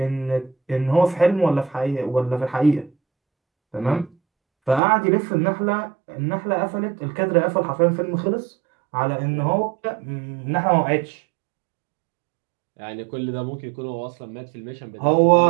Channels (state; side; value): drops out; left; at 4.8 s